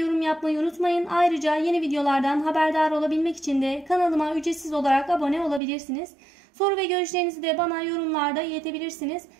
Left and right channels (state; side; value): drops out; left; at 5.6 s